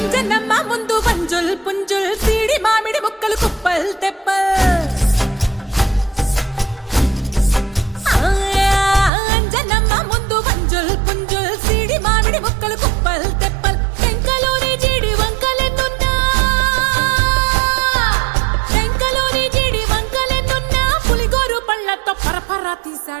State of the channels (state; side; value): drops out; left; at 9.1 s